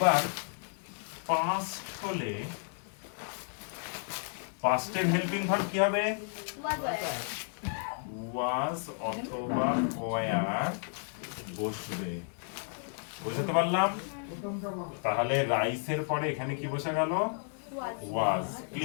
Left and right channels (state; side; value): silent; right; 56 dB below the other